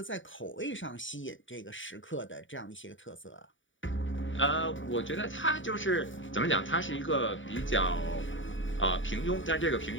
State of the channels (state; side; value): late; right; 0.56 ms